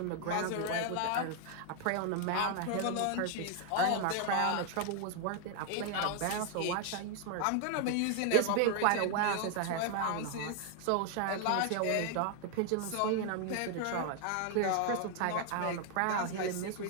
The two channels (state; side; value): different; both; correlation 0.00